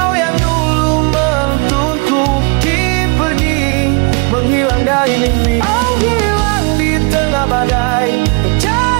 yang dulu menuntunku kini pergi, menghilang dari mimpi. Aku hilang di tengah badai,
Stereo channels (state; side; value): quieter; left; 32.0 dB